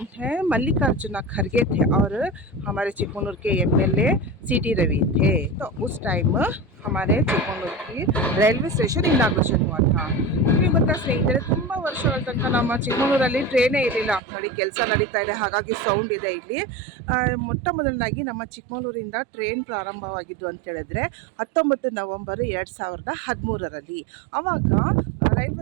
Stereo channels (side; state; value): left; drops out; at 14.2 s